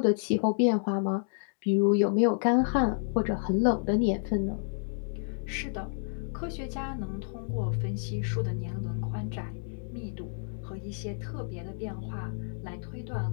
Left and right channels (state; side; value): silent; right; digital silence